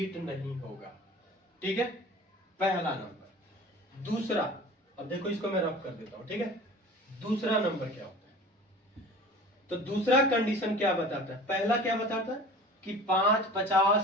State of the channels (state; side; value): normal; both; correlation 0.41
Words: नहीं होगा, ठीक है, पहला नंबर। दूसरा, अब देखो इसको मैं रफ कर देता हूं, ठीक है। दूसरा नंबर क्या होता है, तो दूसरा कंडीशन क्या बताता है, पहला क्या बताता है कि 5